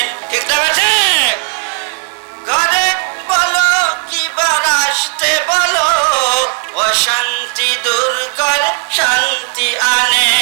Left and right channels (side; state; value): left; quieter; 36.8 dB